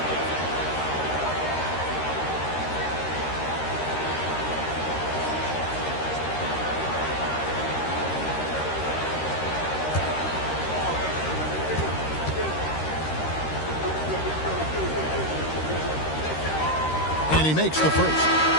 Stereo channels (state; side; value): late; right; 13 ms